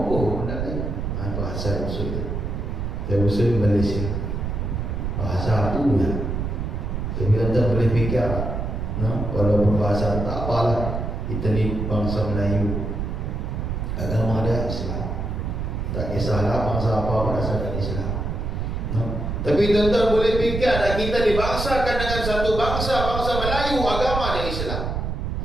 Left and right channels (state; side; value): noise; right; rumble, 3 dB below the sound